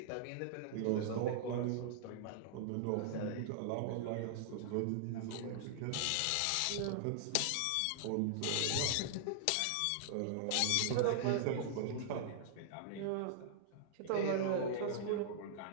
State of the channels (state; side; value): different; both; correlation -0.01